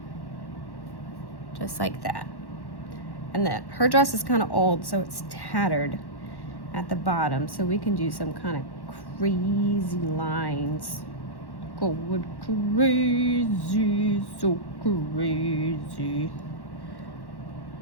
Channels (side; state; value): right; late; 1.1 ms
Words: Just like that. And then her dress is kind of old, so it's tattered at the bottom. So we can do some kind of crazy lines. Going crazy, so crazy.